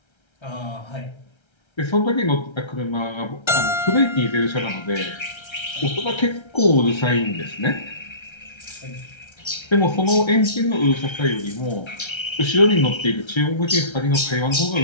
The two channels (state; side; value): late; right; 1.3 ms